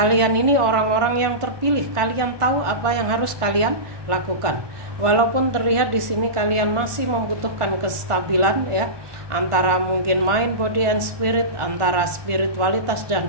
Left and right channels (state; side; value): late; left; 1.5 ms